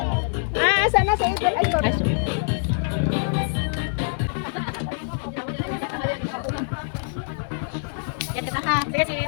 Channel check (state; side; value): silent; right; 62 dB below the other